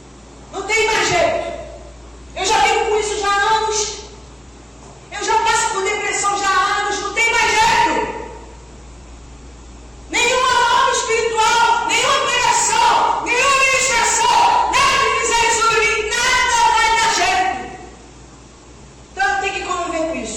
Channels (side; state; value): both; normal; correlation 0.96